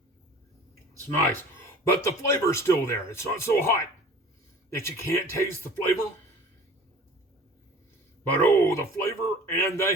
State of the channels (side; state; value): both; normal; correlation 0.44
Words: It's nice. But the flavor's still there. It's not so hot that you can't taste the flavor. But oh, the flavor and the